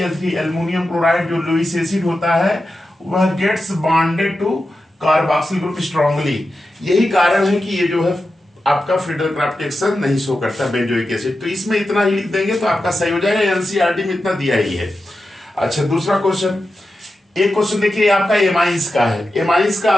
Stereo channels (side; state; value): both; normal; correlation 0.91